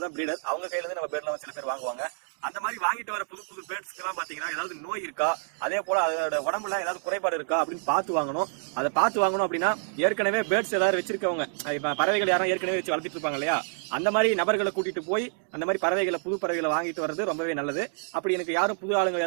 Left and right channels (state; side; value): silent; left; 60 dB below the other